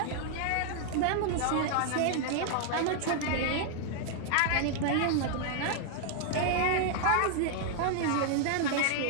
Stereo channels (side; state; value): both; different; correlation 0.00